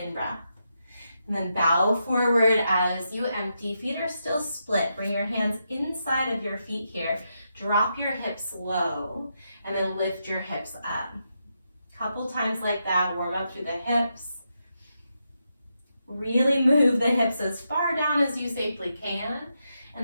And then bow forward as you empty. Feet are still split. Bring your hands inside of your feet here. Drop your hips low and then lift your hips up. Couple times like that. Warm up through the hips. Really move the hips as far down as you safely can.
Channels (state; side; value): inverted; both; correlation -0.84